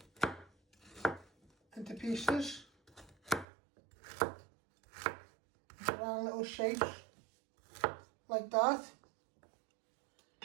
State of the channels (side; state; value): left; drops out; at 3.5 s